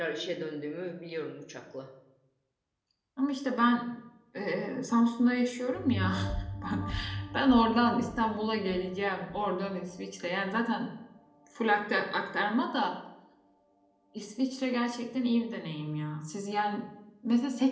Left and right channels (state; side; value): identical; both; correlation 1.00